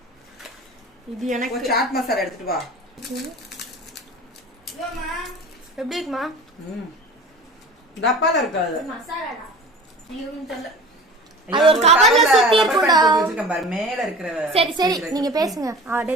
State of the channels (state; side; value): normal; both; correlation 0.39